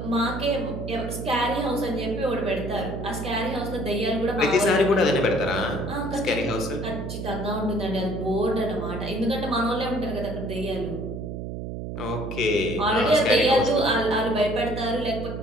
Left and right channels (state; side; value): noise; right; hum, 6 dB below the sound